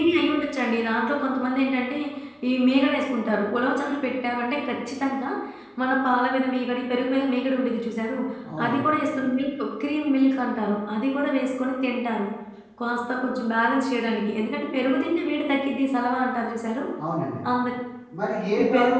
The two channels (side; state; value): both; identical; correlation 1.00